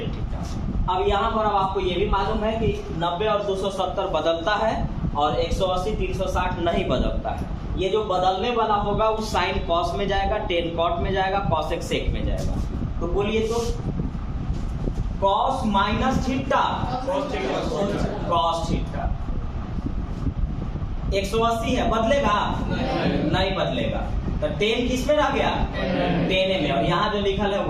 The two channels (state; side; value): identical; both; correlation 1.00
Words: theta. अब यहाँ पर अब आपको ये भी मालूम है कि 90 और 270 बदलता है और 180 360 नहीं बदलता है। ये जो बदलने वाला होगा वो साइन कॉस में जाएगा टेन कॉट में जाएगा कॉसेक सेक में जाएगा। तो बोलिए तो cos minus theta cos theta 180 है बदलेगा नहीं बदलेगा तो टेन किस में रह गया टेन में और यहाँ जो लिखा है